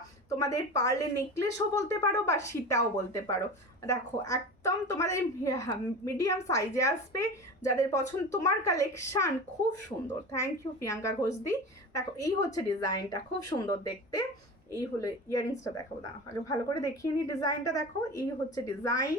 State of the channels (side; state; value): both; normal; correlation 0.31